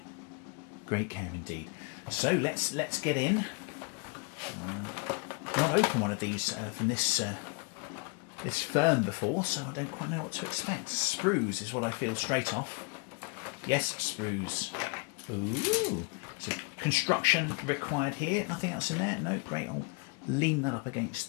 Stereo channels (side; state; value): right; quieter; 33.6 dB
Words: Great care indeed. So let's get in. Not opened one of these from this firm before, so I don't quite know what to expect. Sprues is what I feel straight off. Yes, sprues. Ooh. So construction required here. Nothing else in there. No, great. I'll lean that up